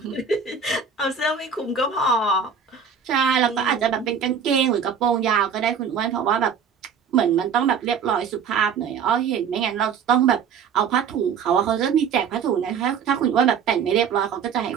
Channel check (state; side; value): quieter; left; 6.7 dB